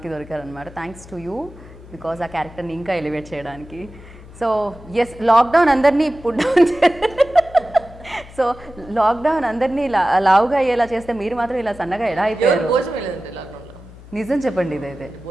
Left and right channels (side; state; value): left; noise; hum, 19 dB below the sound